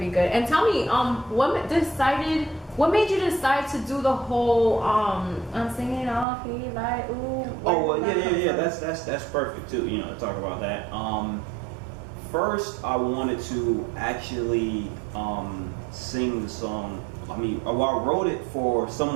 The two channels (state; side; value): drops out; left; at 6.2 s